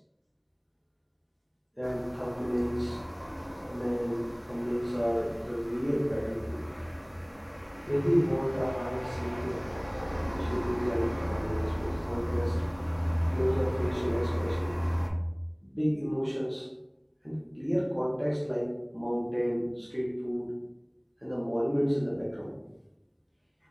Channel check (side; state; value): both; identical; correlation 1.00